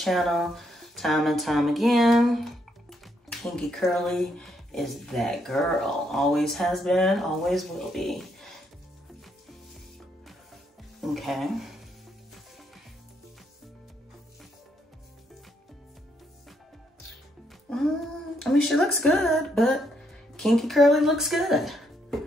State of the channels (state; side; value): normal; both; correlation 0.75